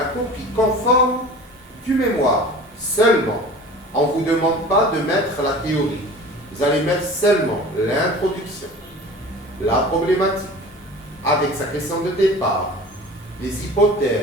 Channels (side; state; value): both; normal; correlation 0.39